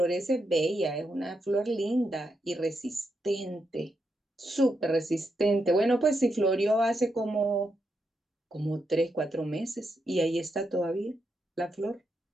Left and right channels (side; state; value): both; normal; correlation 0.83